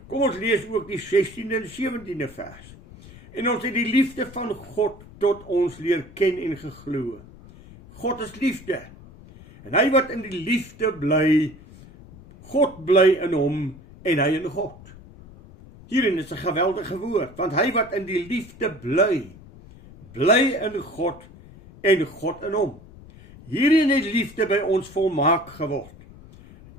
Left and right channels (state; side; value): noise; left; rumble, 20 dB below the sound